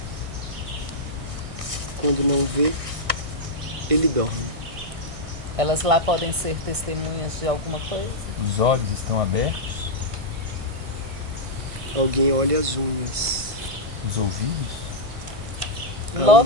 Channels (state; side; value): late; left; 1.6 ms